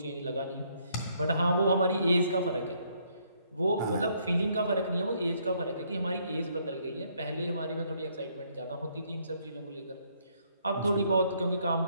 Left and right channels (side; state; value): both; inverted; correlation -0.69